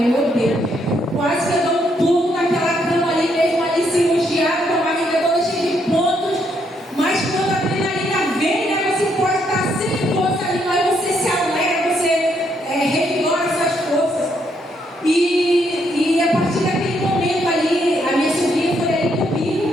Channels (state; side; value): normal; both; correlation 0.74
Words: Meu Deus, quase que eu dou um pulo naquela cama ali mesmo, ali cirurgiada, com a barriga toda cheia de pontos. Mas quando a adrenalina vem, né, você pode estar sem força ali, mas você se alegra, você revigora suas forças. E a partir daquele momento ali, a minha sobrinha foi ali comigo